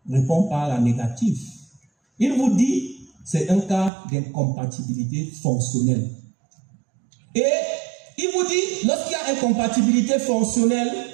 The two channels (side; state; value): left; drops out; at 3.9 s